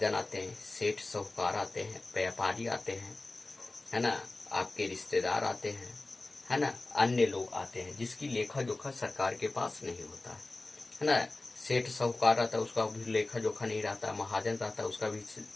आते हैं, सेठ साहूकार आते हैं, व्यापारी आते हैं, है ना, आपके रिश्तेदार आते हैं, है ना, अन्य लोग आते हैं जिसकी लेखा जोखा सरकार के पास नहीं होता है ना। सेठ साहूकार रहता है उसका भी लेखा जोखा नहीं रहता, महाजन रहता है उसका भी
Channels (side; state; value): right; quieter; 3.1 dB